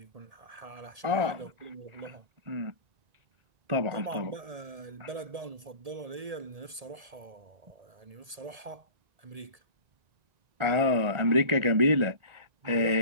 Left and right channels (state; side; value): late; left; 1.7 ms